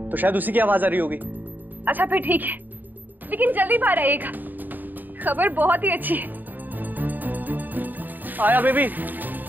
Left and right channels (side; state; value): left; late; 0.088 ms